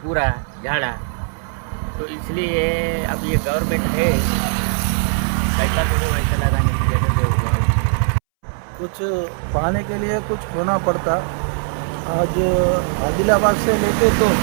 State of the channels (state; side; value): silent; left; 65 dB below the other